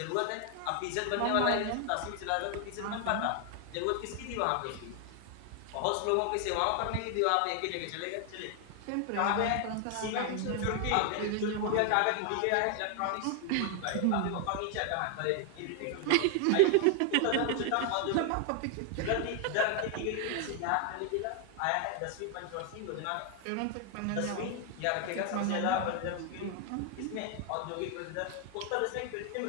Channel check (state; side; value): different; both; correlation 0.00